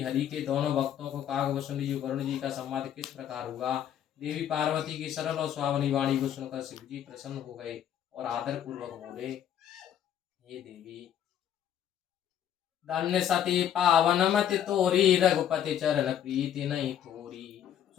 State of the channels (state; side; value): quieter; right; 10.0 dB